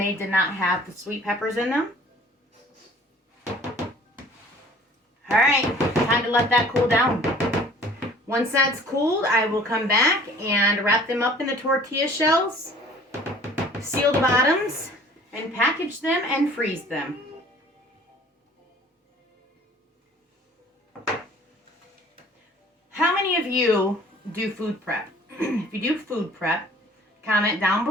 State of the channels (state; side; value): normal; both; correlation 0.51